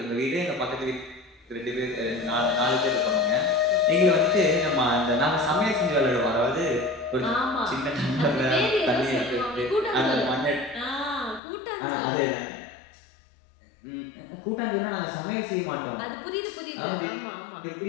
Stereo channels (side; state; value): right; drops out; at 11.4 s